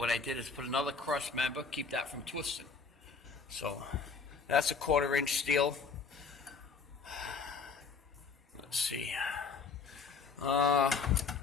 I did is put another cross member, keep that from twisting. So that's a 1/4-inch steel. Let's see.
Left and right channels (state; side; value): quieter; right; 5.1 dB